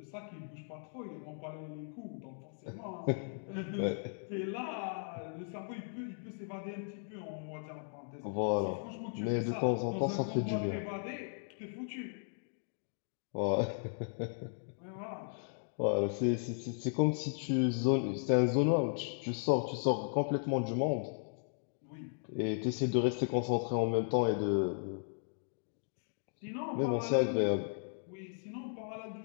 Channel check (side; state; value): right; silent; digital silence